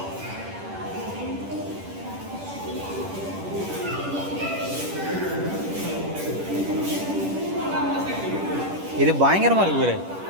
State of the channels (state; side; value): late; left; 10 ms